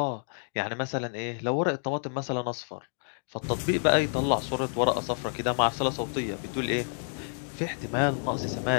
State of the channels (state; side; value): silent; right; 59 dB below the other